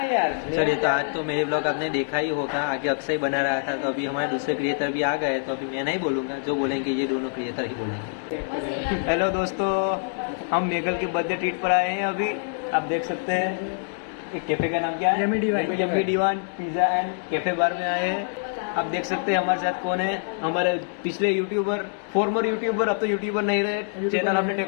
चलिए, तो आज तो मेरे ब्लॉग आपने देखा ही होगा। आगे अक्षय बना रहा था, तो अभी हमारे दूसरे क्रिएटर भी आ गए। तो अभी मैं नहीं बोलूंगा, जो बोलेंगे ये दोनों क्रिएटर ही बोलेंगे। हेलो दोस्तों, हम मेघल के बर्थडे ट्रीट पर आए हैं। अभी आप देख सकते हैं एक कैफे का नाम क्या है? Yummy divine pizza and cafe bar में आए हैं। आप देख सकते हैं हमारे साथ कौन है। हमारे पिछले यूट्यूबर, फॉर्मर यूट्यूबर, अब तो यूट्यूबर नहीं रहे, चैनल हमने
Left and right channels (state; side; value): silent; right; digital silence